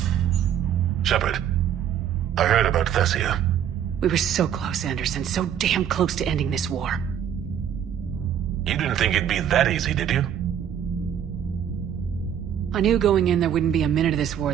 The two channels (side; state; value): left; quieter; 9.3 dB